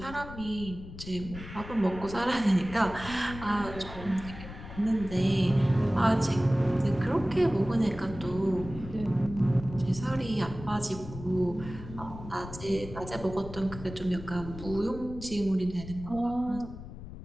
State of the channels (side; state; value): left; noise; rumble, 13 dB below the sound